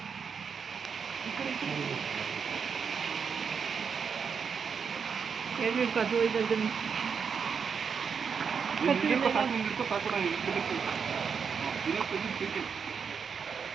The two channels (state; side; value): quieter; left; 6.3 dB